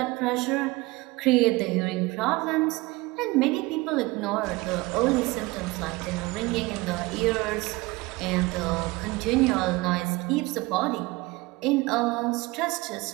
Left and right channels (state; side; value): quieter; left; 22.5 dB